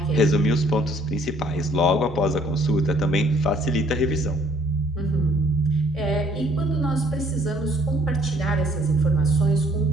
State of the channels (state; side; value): normal; both; correlation 0.61